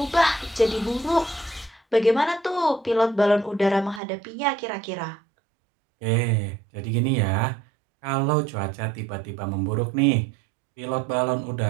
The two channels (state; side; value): drops out; left; at 4.0 s